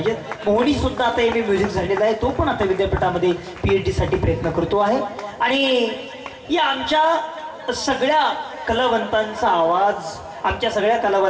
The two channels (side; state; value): both; identical; correlation 1.00